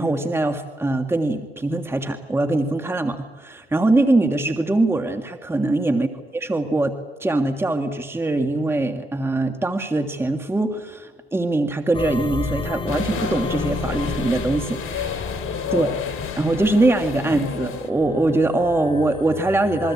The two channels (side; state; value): both; normal; correlation 0.81